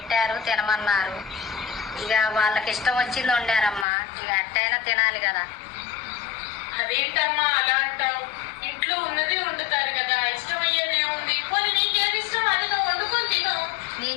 తినమన్నారు. ఇక వాళ్ళకి ఇష్టం వచ్చింది వండారమ్మా, ఇక అట్టయినా తినాలి కదా. అదేంటమ్మా అలా అంటావు? ఇంట్లో ఉన్నది వండుతారు కదా, ఇష్టమయ్యేది ఏముంది? పోనీ నీకేది ఇష్టం అది నువ్వు వండుకొని తిను.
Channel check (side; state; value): right; drops out; at 3.9 s